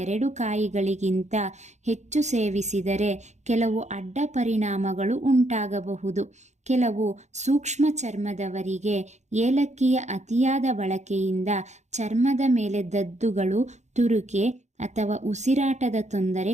ಕಾಯಿಗಳಿಗಿಂತ ಹೆಚ್ಚು ಸೇವಿಸಿದರೆ ಕೆಲವು ಅಡ್ಡ ಪರಿಣಾಮಗಳು ಉಂಟಾಗಬಹುದು. ಕೆಲವು ಸೂಕ್ಷ್ಮ ಚರ್ಮದವರಿಗೆ ಏಲಕ್ಕಿಯ ಅತಿಯಾದ ಬಳಕೆಯಿಂದ ಚರ್ಮದ ಮೇಲೆ ದದ್ದುಗಳು, ತುರುಕೆ ಅಥವಾ ಉಸಿರಾಟದ ತೊಂದರೆ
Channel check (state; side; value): late; left; 0.33 ms